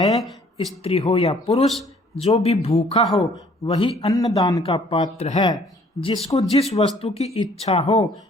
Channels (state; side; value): normal; both; correlation 0.59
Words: स्त्री हो या पुरुष, जो भी भूखा हो वही अन्नदान का पात्र है। जिसको जिस वस्तु की इच्छा हो